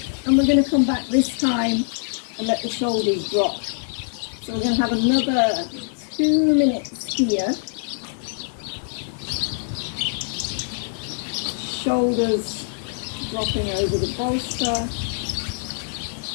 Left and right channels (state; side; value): silent; right; digital silence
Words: and we're going to come back this time and let the shoulders drop. So we're going to have another 2 minutes here. Shoulders dropping over the bolster,